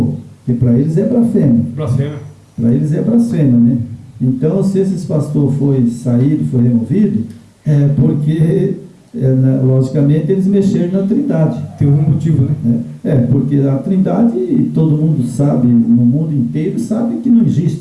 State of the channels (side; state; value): both; identical; correlation 1.00